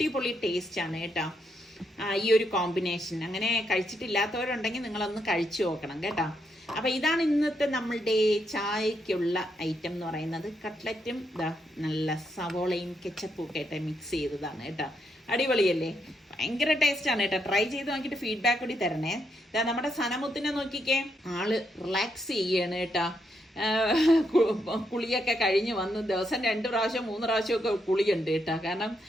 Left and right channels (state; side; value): normal; both; correlation 0.79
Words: ടേസ്റ്റാണ് കേട്ടോ ഈ ഒരു കോമ്പിനേഷൻ. അങ്ങനെ കഴിച്ചിട്ടില്ലാത്തവരുണ്ടെങ്കിൽ നിങ്ങളൊന്ന് കഴിച്ചു നോക്കണം കേട്ടോ. അപ്പം ഇതാണ് ഇന്നത്തെ നമ്മളുടെ ചായക്കുള്ള ഐറ്റം എന്ന് പറയുന്നത്. കട്ട്ലറ്റും നല്ല സവോളയും കെച്ചപ്പും ഒക്കെ ആയിട്ട് മിക്സ് ചെയ്തതാണ് കേട്ടോ. അടിപൊളിയല്ലേ, ഭയങ്കര ടേസ്റ്റാണ് കേട്ടോ. ട്രൈ ചെയ്ത് നോക്കിയിട്ട് ഫീഡ്ബാക്ക് കൂടി തരണേ. നമ്മുടെ സനമുത്തിനെ നോക്കിക്കേ, ആള് റിലാക്സ് ചെയ്യാണ് കേട്ടോ. കുളിയൊക്കെ കഴിഞ്ഞ് വന്ന് ദിവസം 2 പ്രാവശ്യം 3 പ്രാവശ്യമൊക്കെ കുളിയുണ്ട് കേട്ടോ. കാരണം